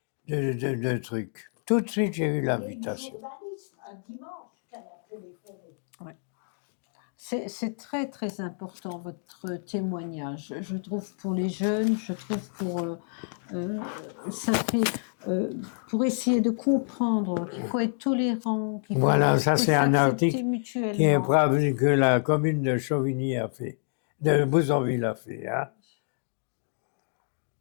de truc. Tout de suite, j'ai eu Il y a une l'invitation. journaliste un dimanche qu'elle a téléphoné. C'est très, très important, votre témoignage. Je trouve pour les jeunes, je trouve pour... ça fait... pour essayer de comprendre qu'il faut être tolérant, qu'il faut, Voilà, ça faut c'est un s'accepter article mutuellement. qui est brave que la commune de Chauvigny a fait, de Bouzonville a fait. Hein.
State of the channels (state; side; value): silent; right; digital silence